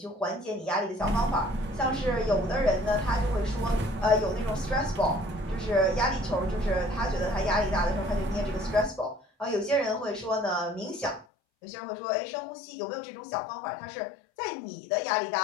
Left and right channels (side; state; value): right; drops out; at 11.2 s